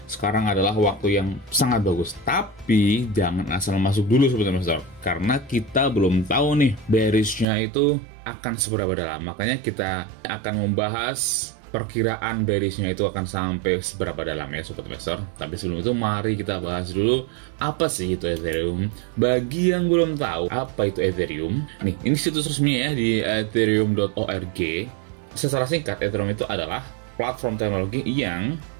Sekarang adalah waktu yang sangat bagus, tapi jangan asal masuk dulu Sobat Investor karena kita belum tahu nih bearishnya itu akan seberapa dalam. Makanya kita akan membahas perkiraan bearishnya itu akan sampai seberapa dalam ya Sobat Investor. Tapi sebelum itu mari kita bahas dulu apa sih itu Ethereum. Bagi yang belum tahu apa itu Ethereum, nih ini situs resmi ya di ethereum.org. Secara singkat, Ethereum itu adalah platform teknologi yang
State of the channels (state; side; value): drops out; left; at 7.5 s